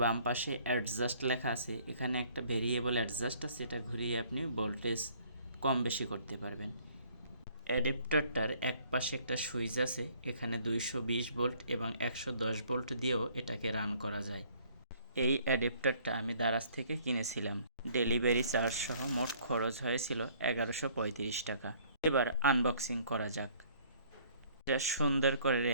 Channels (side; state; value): both; inverted; correlation -0.59